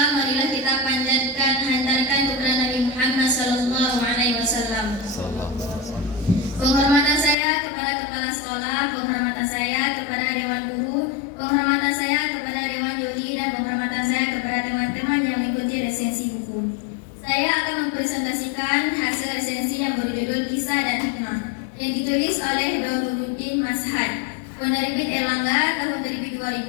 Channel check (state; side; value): drops out; right; at 7.4 s